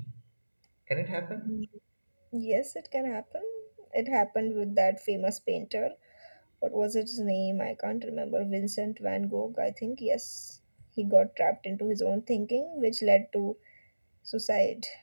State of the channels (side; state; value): both; inverted; correlation -1.00